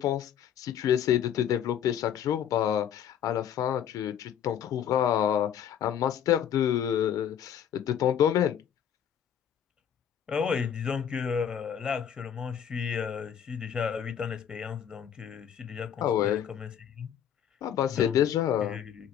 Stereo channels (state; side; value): quieter; right; 9.2 dB